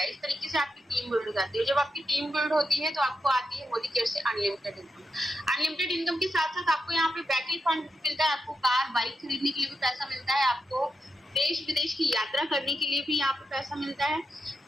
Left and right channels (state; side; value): normal; both; correlation 0.86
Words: इस तरीके से आपकी टीम बिल्ड हो जाती है। जब आपकी टीम बिल्ड होती है तो आपको आती है मोदी केयर से अनलिमिटेड इनकम। अनलिमिटेड इनकम के साथ साथ आपको यहाँ पे बैकएंड फंड मिलता है। आपको कार, बाइक खरीदने के लिए भी पैसा मिलता है। आपको देश विदेश की यात्रा करने के लिए भी यहाँ पे पैसा मिलता है